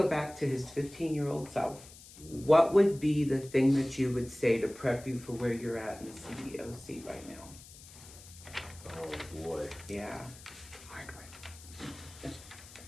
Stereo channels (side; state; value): left; noise; hiss, 19 dB below the sound